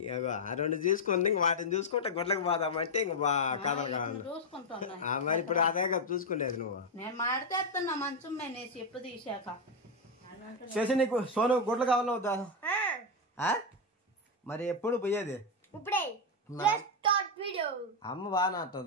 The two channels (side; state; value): both; normal; correlation 0.03